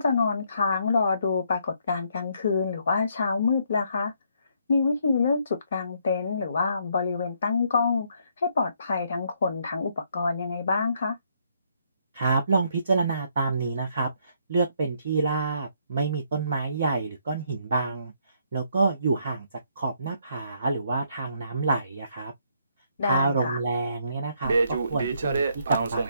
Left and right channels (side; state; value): both; inverted; correlation -0.70